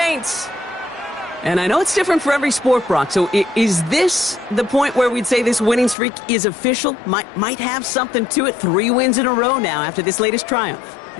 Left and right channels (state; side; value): drops out; right; at 6.0 s